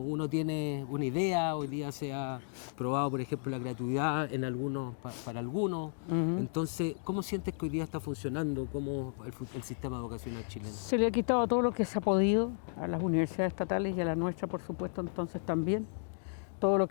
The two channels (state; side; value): silent; right; digital silence